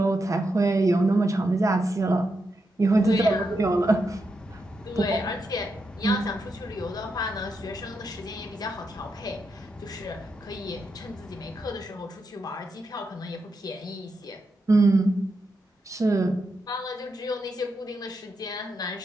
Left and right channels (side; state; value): both; normal; correlation 0.84